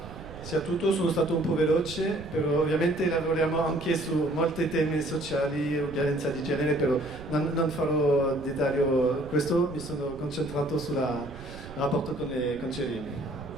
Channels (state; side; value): noise; right; rumble, 14 dB below the sound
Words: sia tutto, sono stato un po' veloce, però ovviamente lavoriamo anche su molti temi sociali, violenza di genere, però non farò dettaglio questo, mi sono concentrato sul rapporto con i concedini.